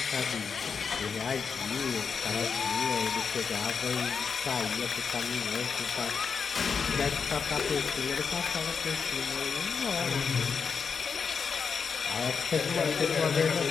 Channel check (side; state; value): right; quieter; 5.9 dB